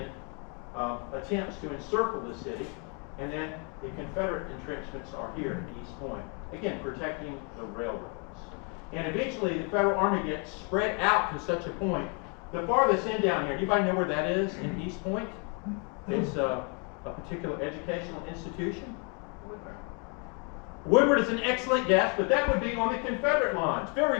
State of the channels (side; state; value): right; quieter; 35.2 dB